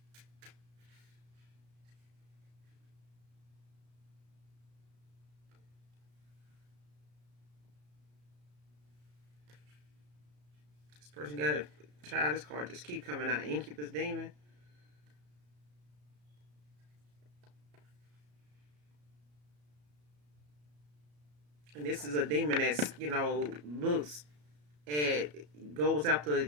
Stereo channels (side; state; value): left; late; 34 ms